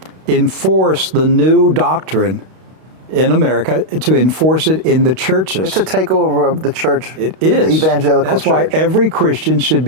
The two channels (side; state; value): left; late; 32 ms